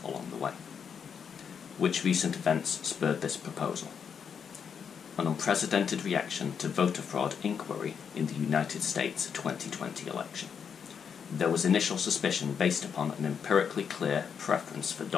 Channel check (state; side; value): quieter; right; 7.0 dB